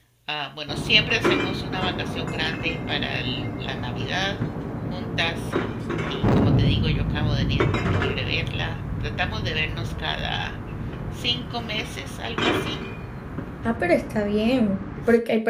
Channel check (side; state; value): both; identical; correlation 1.00